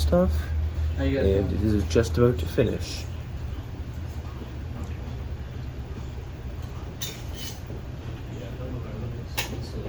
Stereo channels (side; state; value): both; identical; correlation 1.00